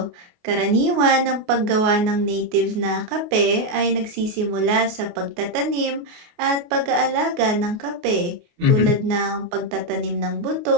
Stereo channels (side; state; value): left; late; 29 ms